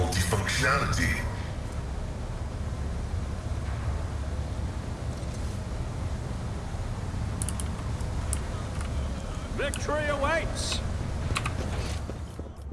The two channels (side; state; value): both; identical; correlation 1.00